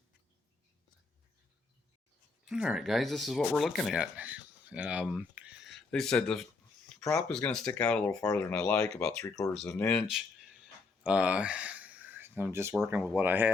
All right, guys, this is what we're looking at. They said the prop is going to stick out a little farther than I like, about 3/4 of an inch. I'm just working with what I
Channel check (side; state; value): right; quieter; 4.1 dB